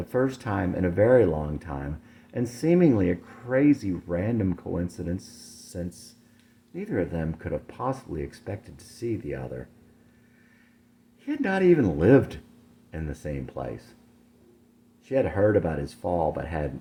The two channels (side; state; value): both; identical; correlation 1.00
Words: first time in a very long time, and seemingly a crazy random coincidence since neither of them could have possibly expected to see the other. He had not even lived in the same place. She had heard about his fall, but had